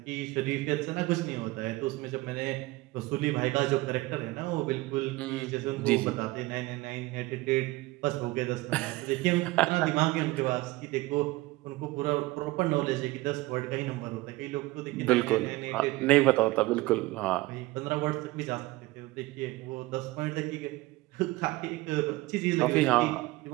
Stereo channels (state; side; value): quieter; left; 20.3 dB